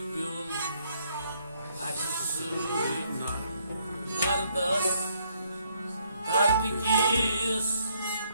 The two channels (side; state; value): both; inverted; correlation -0.70